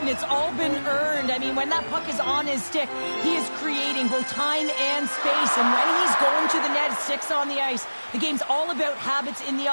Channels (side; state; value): both; inverted; correlation -1.00